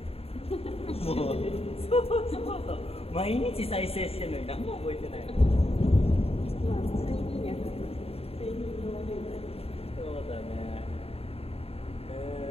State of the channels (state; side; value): late; right; 0.29 ms